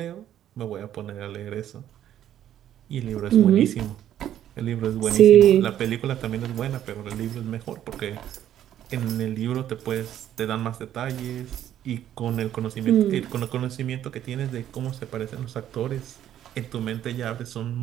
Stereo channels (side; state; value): left; quieter; 11.2 dB